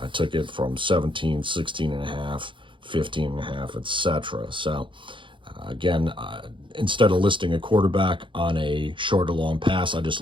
took it from 17, 16 and a half, 15 and a half, etc. So again, instead of listing a quarterback on a short or long pass, I just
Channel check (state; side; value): late; left; 0.24 ms